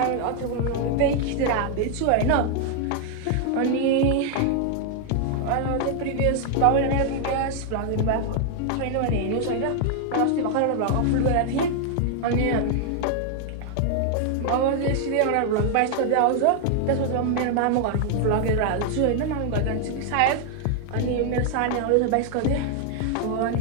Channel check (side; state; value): both; different; correlation 0.00